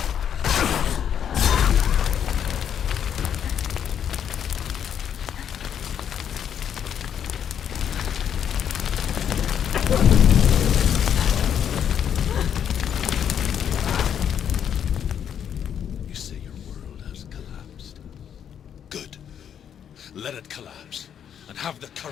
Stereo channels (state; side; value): quieter; right; 8.8 dB